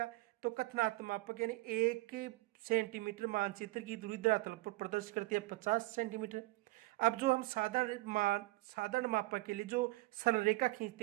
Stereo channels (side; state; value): left; quieter; 21.0 dB